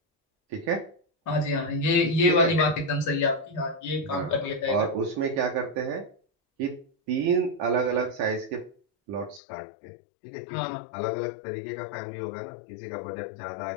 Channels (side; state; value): right; drops out; at 9.4 s